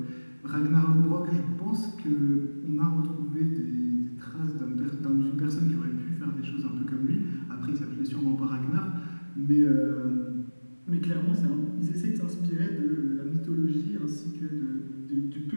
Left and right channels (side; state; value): both; inverted; correlation -1.00